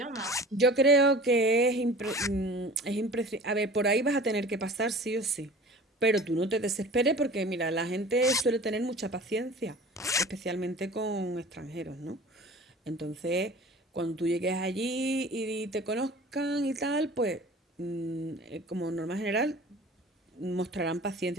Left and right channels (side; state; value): both; normal; correlation 0.42